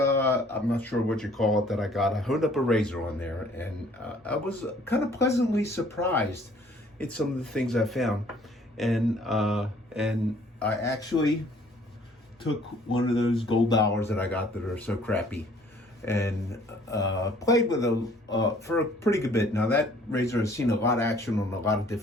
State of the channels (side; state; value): both; normal; correlation 0.57